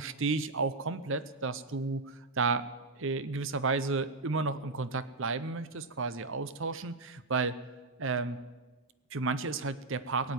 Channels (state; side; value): quieter; left; 3.5 dB